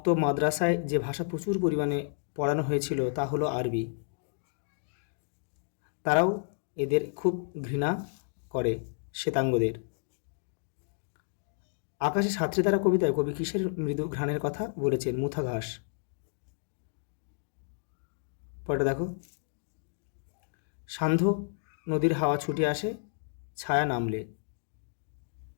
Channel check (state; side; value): silent; right; digital silence